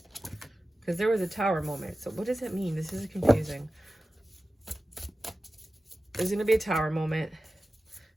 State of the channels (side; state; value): both; normal; correlation 0.95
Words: Because there was a Tower moment. So what does it mean? This is confusing. There's going to be a Tower moment.